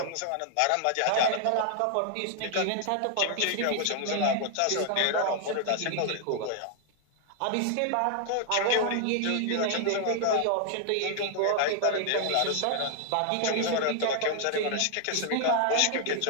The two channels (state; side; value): different; both; correlation 0.00